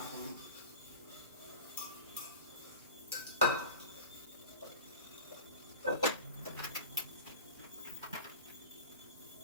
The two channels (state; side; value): inverted; both; correlation -0.35